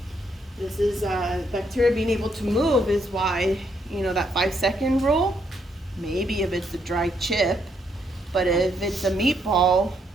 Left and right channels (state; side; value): normal; both; correlation 0.74